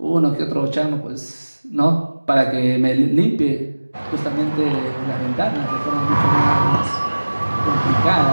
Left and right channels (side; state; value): both; inverted; correlation -1.00